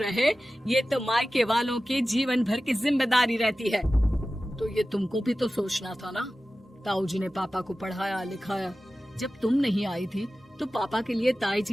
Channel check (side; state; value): both; normal; correlation 0.95